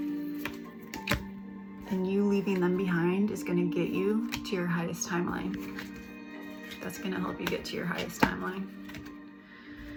And you leaving them behind is going to get you to your highest timeline. That's going to help you get to your highest timeline.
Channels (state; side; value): identical; both; correlation 1.00